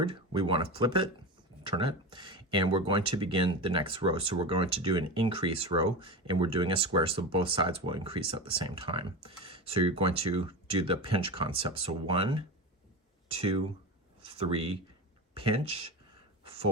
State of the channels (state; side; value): normal; both; correlation 0.25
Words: we want to flip it, turn it, and we're going to begin the next row. So we're going to do an increase row, and we're doing a square, so both sides will increase at the same time. So you're going to do the pinch concept. So 1, 2, 3, pinch,